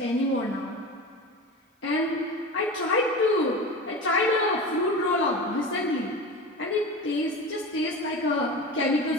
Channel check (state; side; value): normal; both; correlation 0.29